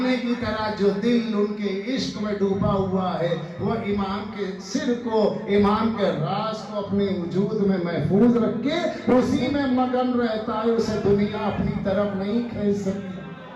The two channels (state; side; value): identical; both; correlation 1.00